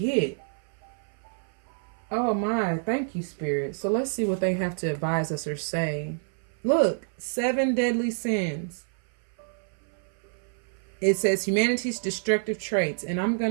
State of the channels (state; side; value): silent; left; 58 dB below the other